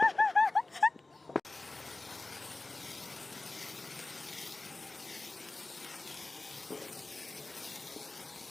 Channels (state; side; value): quieter; right; 3.2 dB